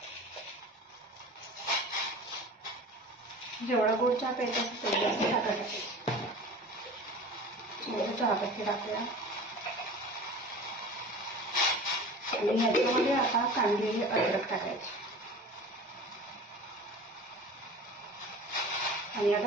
जेवढा गोड चहा प्यायचा तेवढी आपण साखर टाकायची. थोडं चहापत्ती टाकूया आणि ह्याच्यामध्ये आता कांदलेली अद्रक टाकायची आणि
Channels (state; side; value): normal; both; correlation 0.38